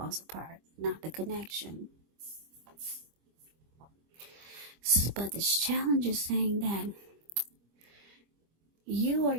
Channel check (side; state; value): left; late; 25 ms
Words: apart, not the connection. But this challenge is saying that you or